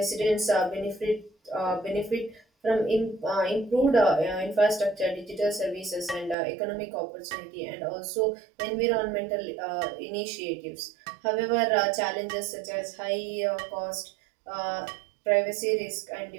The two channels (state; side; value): drops out; left; at 6.4 s